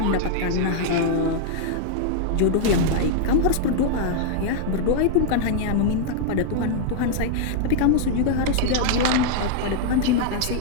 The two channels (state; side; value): different; both; correlation -0.01